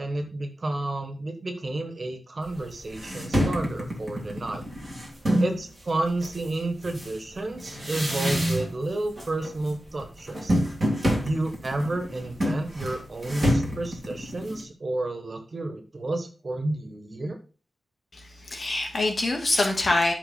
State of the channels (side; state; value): both; normal; correlation 0.92